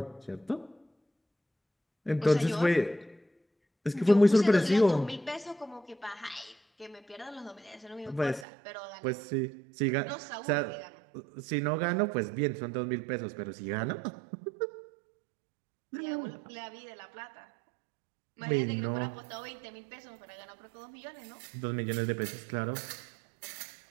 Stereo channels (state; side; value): drops out; left; at 8.5 s